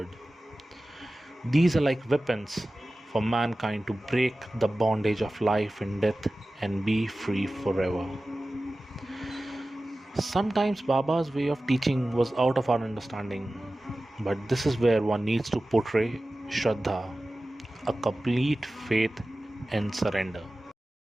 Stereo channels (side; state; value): both; normal; correlation 0.96